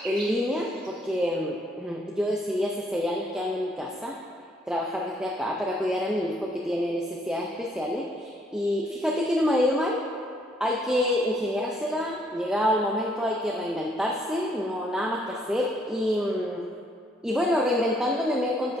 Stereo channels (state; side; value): normal; both; correlation 0.68